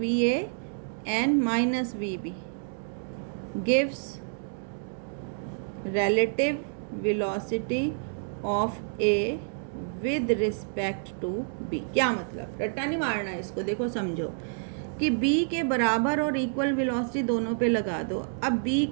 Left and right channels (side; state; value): left; silent; digital silence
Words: A and minus we B, gives relative velocity of A with respect to B। क्या मतलब? रट्टा नहीं मारना है इसको, देखो समझो कि B के बराबर और इक्वल वेलोसिटी दोनों पे लगा दो। अब B